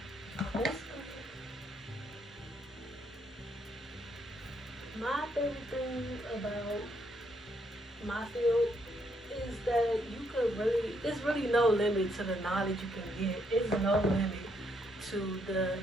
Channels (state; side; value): normal; both; correlation 0.74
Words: My favorite thing about my field is that there's really no limit to the knowledge you can get. There's no limit to the